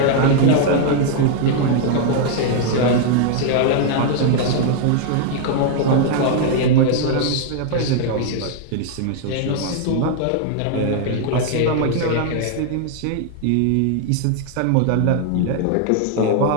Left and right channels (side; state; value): both; different; correlation 0.00